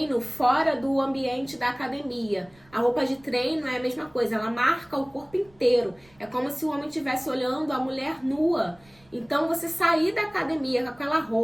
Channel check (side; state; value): right; noise; rumble, 30 dB below the sound